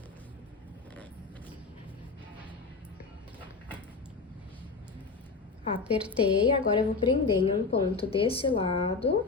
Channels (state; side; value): quieter; right; 4.3 dB